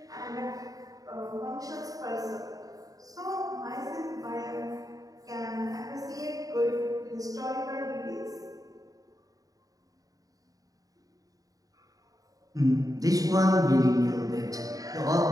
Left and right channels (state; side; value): late; left; 0.17 ms